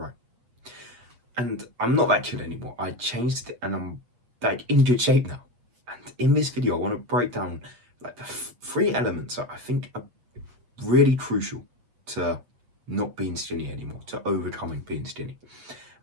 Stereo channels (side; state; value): left; late; 8.3 ms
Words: And I'm not that kid anymore. I changed it, and I'm like in good shape now. And in this video, I want to break down like the three elements that I think are really crucial to not being skinny anymore, to overcoming being skinny.